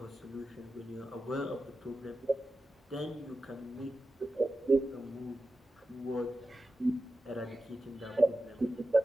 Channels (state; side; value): normal; both; correlation 0.92